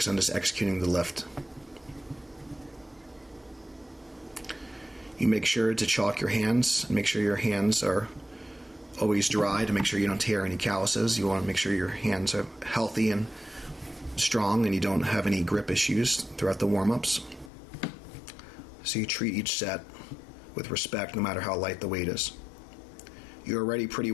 on just executing the lift. You make sure to chalk your hands, make sure your hands are always dry to make sure you don't tear any calluses. You want to make sure your hands are healthy and strong and you don't have any grip issues throughout the warm-ups. So you treat each set with respect no matter how light the weight is. You're already pretty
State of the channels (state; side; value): drops out; right; at 17.5 s